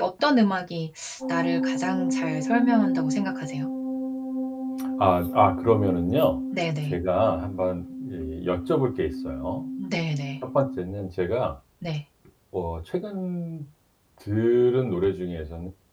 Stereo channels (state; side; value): identical; both; correlation 1.00